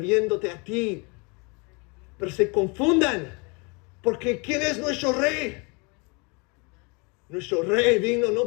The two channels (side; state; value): right; quieter; 30.9 dB